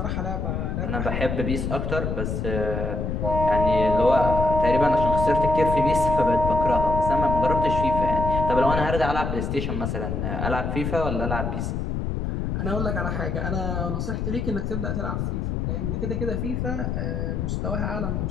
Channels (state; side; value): noise; left; rumble, 2 dB below the sound